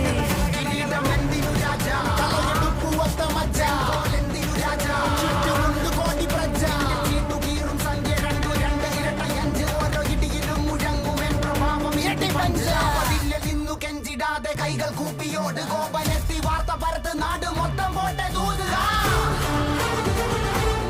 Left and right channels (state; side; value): identical; both; correlation 1.00